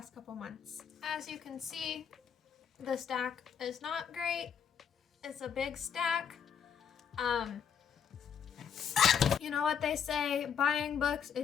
couple months. As you can see, the stack is not great. It's a big stack. You know what they say, buying books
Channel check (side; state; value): right; quieter; 7.5 dB